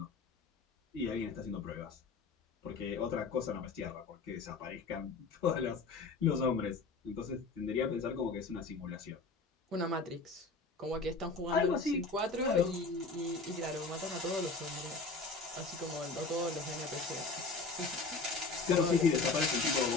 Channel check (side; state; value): right; quieter; 4.0 dB